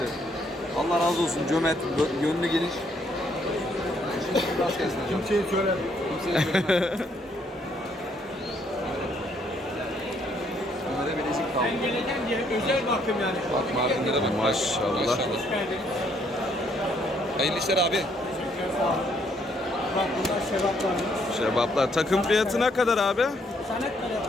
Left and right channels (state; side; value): normal; both; correlation 0.69